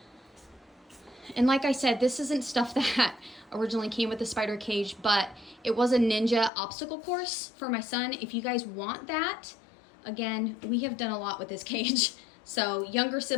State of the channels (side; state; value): right; drops out; at 6.5 s